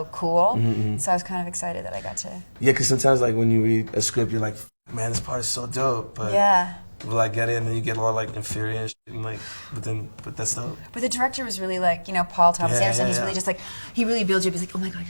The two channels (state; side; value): inverted; both; correlation -1.00